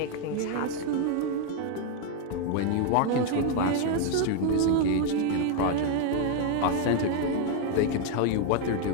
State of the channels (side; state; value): both; different; correlation 0.01